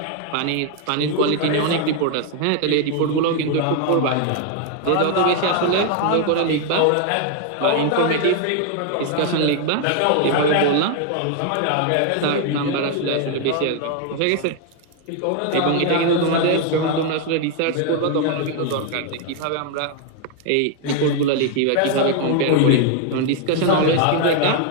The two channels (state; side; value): different; both; correlation 0.00